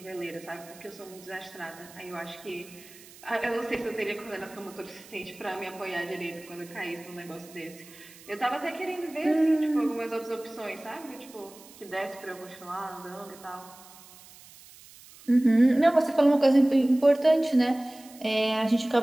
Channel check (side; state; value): right; noise; hiss, 21 dB below the sound